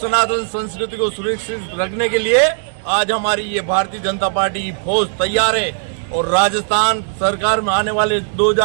संस्कृति को सुरक्षित रखने के लिए आज हमारी ये भारतीय जनता पार्टी की फौज तैयार है और राजस्थान सरकार में आने वाले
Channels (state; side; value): silent; left; digital silence